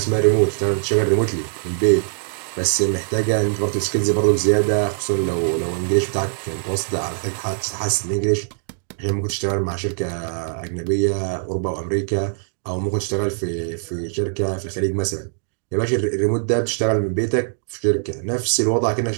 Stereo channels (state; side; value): silent; left; digital silence